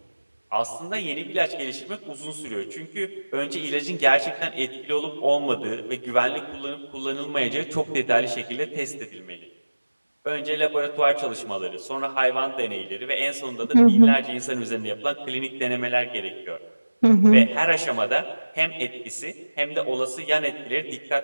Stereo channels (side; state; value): both; inverted; correlation -1.00